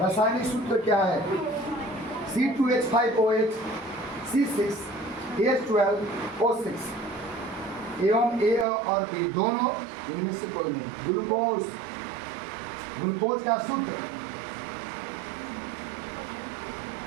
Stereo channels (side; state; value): left; drops out; at 8.7 s